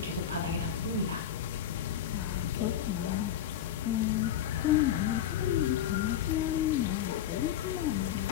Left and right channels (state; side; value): quieter; right; 10.1 dB